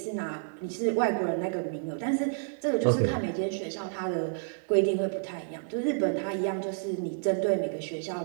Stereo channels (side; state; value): left; silent; digital silence